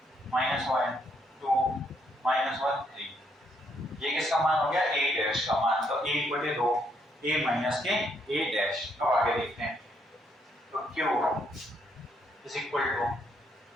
माइनस 1 2 माइनस 1 3। ये किसका मान हो गया ए डैश का मान, तो ए बटे 2 ए माइनस के ए डैश। तो आगे देखते हैं, तो क्यू इज इक्वल टू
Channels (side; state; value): both; normal; correlation 0.73